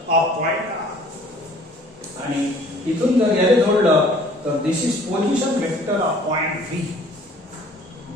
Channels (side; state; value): both; normal; correlation 0.53